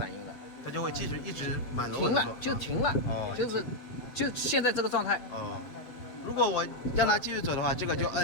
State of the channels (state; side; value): late; right; 7.7 ms